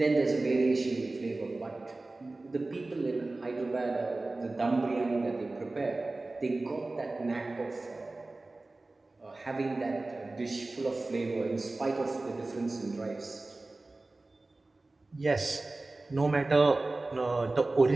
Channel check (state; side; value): quieter; left; 3.1 dB